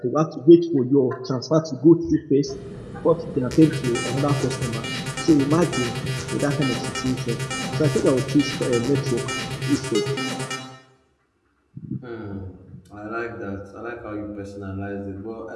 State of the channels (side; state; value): both; identical; correlation 1.00